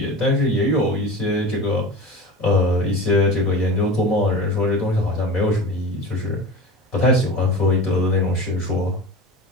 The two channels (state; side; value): normal; both; correlation 0.32